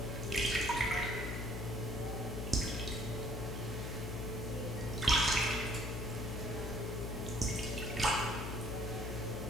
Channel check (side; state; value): left; noise; hum, 4 dB below the sound